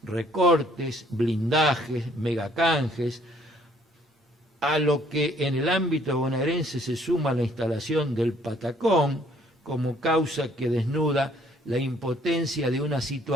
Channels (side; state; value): both; normal; correlation 0.62